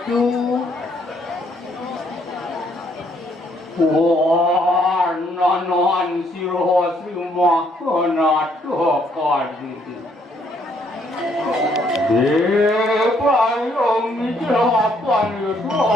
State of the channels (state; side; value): normal; both; correlation 0.69